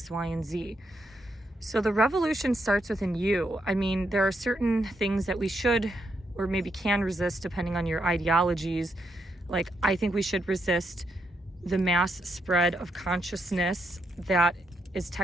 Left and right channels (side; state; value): both; normal; correlation 0.80